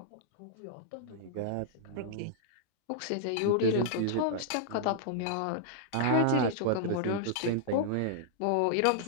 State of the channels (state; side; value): different; both; correlation -0.01